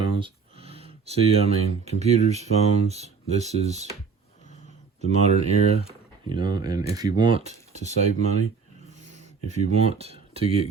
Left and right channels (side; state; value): left; quieter; 5.3 dB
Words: See, I mean, computers, phones, this is the modern era, you know, and if you want to save money, if you want to